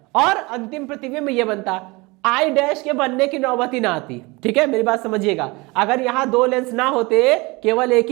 और अंतिम प्रतिबिंब ये बनता, आई डैश के बनने की नौबत ही ना आती, ठीक है। मेरी बात समझिएगा, अगर यहां दो लेंस ना होते, केवल एक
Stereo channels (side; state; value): left; quieter; 24.8 dB